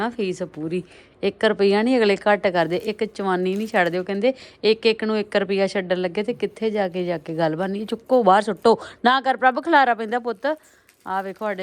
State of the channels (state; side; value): identical; both; correlation 1.00